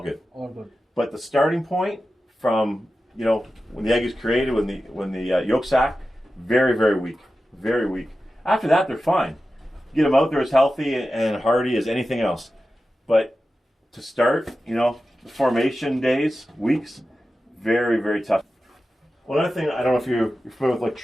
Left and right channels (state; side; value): normal; both; correlation 0.93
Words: good. All good. But the starting point from, when the egg is created, when the yolk sac, very, very weak. Very weak. After that, they're fine. Get them out there as healthy and hardy as anything else. But to start, the formation days, weeks, very, very tough. One other thing, I don't know if you're familiar with